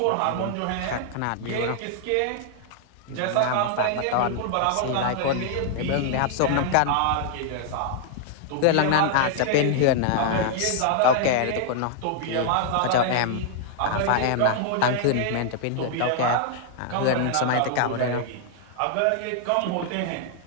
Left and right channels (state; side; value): different; both; correlation 0.00